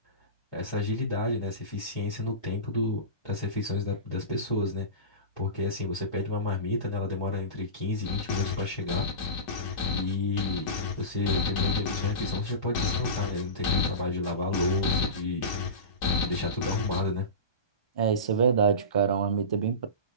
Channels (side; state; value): right; late; 1.2 ms